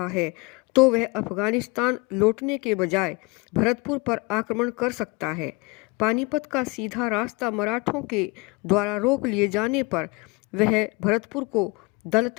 है तो वह अफगानिस्तान लौटने के बजाय भरतपुर पर आक्रमण कर सकता है। पानीपत का सीधा रास्ता मराठों के द्वारा रोक लिए जाने पर वह भरतपुर को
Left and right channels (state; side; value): quieter; right; 26.5 dB